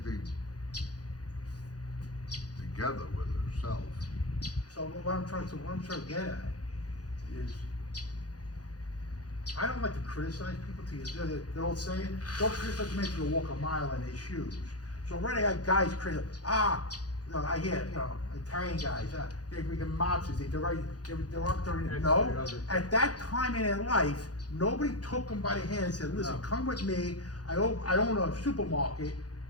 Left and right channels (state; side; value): late; right; 0.68 ms